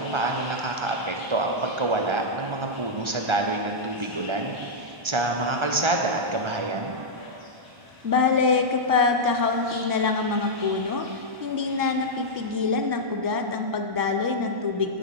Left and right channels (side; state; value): left; late; 1.3 ms